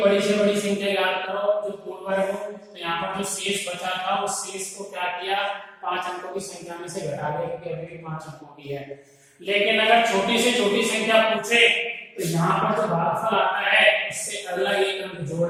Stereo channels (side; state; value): both; identical; correlation 1.00